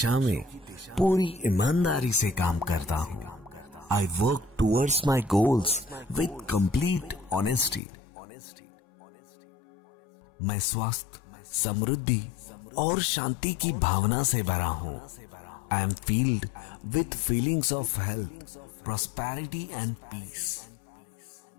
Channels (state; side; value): drops out; right; at 7.8 s